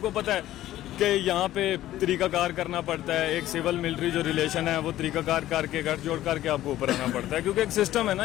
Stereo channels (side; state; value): right; quieter; 14.0 dB